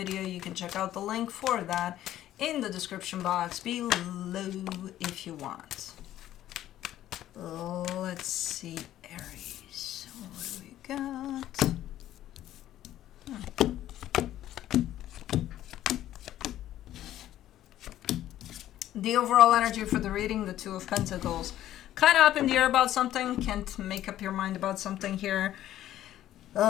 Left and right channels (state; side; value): quieter; right; 12.9 dB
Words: you can check out the link for that in the description box below if you want. Let's see, Aries. What do we got? The overall energy for the reading, the Two of Pentacles. Kind of up in the air about something. Can't make up your mind about something here.